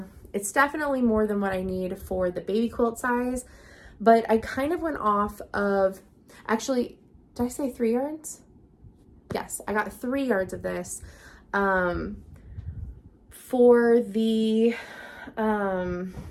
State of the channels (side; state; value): both; identical; correlation 1.00